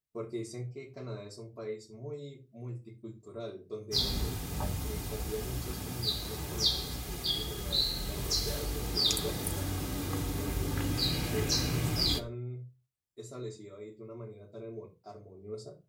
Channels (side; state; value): both; identical; correlation 1.00